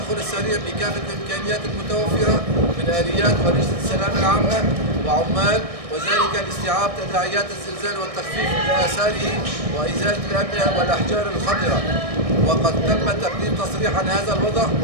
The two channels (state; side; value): late; left; 1.6 ms